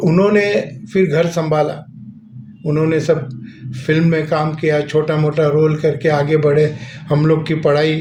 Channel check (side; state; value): both; identical; correlation 1.00